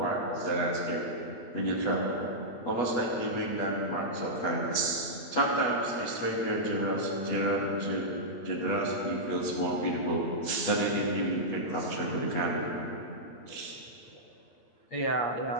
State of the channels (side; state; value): right; late; 8.2 ms